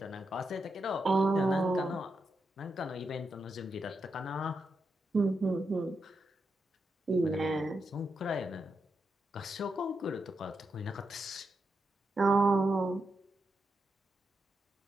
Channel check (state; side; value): normal; both; correlation 0.85